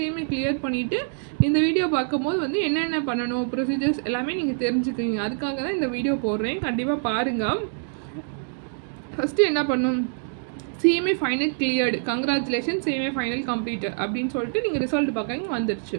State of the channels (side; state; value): left; silent; digital silence